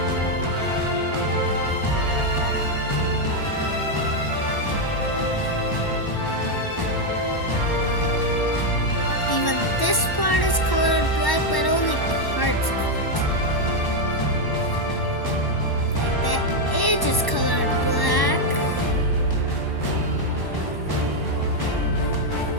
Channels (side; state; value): right; late; 1.1 ms